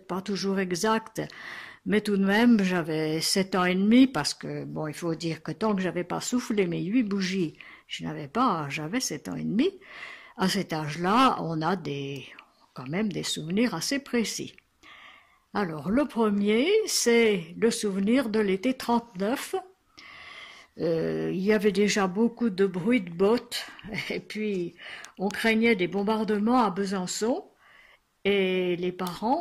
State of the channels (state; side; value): identical; both; correlation 1.00